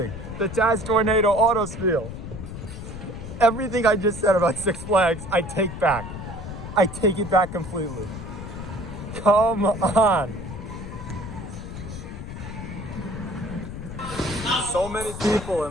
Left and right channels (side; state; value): left; noise; rumble, 9 dB below the sound